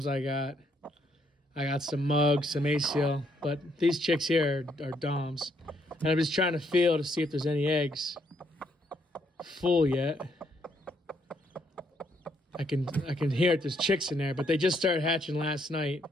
I got some mugs, some Asil, but these chicks here are Doms. And I'm just trying to feel to see if there's any eggs full yet. I can hear it, there's chicks in there, but they just started hatching last night.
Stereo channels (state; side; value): normal; both; correlation 0.72